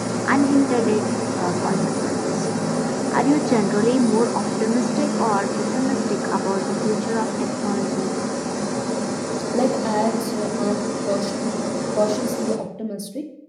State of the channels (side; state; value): both; identical; correlation 1.00